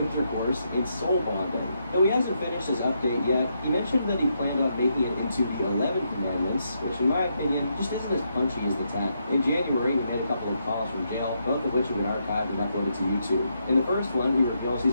and soul bonding. Though he hasn't finished his update yet, he mentioned that he planned on making it into the 11 Commandments, which in my opinion just isn't as punchy as the 10. In January, he made a couple of calls from jail, both of which have been archived and uploaded to YouTube. In the first one, he reveals he's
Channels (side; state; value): both; inverted; correlation -0.80